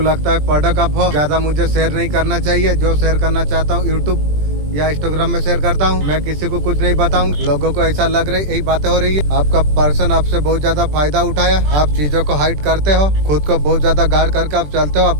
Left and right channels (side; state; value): left; late; 20 ms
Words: लगता है प्रोडक्ट आप हो, ज्यादा मुझे शेयर नहीं करना चाहिए। जो शेयर करना चाहता हूँ यूट्यूब या इंस्टाग्राम में शेयर करता हूँ, मैं किसी को कुछ नहीं बताऊँ। लोगों को ऐसा लग रहा है यही बातें हो रही है। आपका पर्सन आपसे बहुत ज्यादा फायदा उठाया, आप चीजों को हाइड करते हो, खुद को बहुत ज्यादा गार्ड करके आप चलते हो।